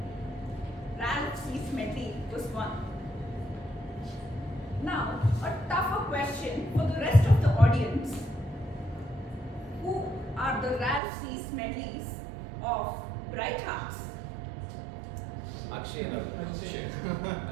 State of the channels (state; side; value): drops out; left; at 11.0 s